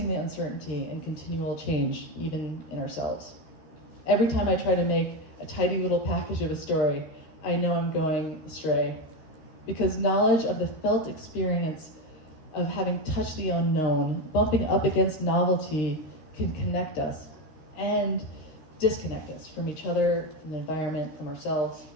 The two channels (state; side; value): late; right; 13 ms